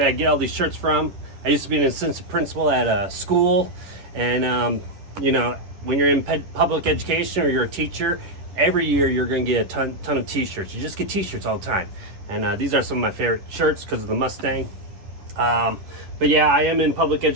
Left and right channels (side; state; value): left; late; 10 ms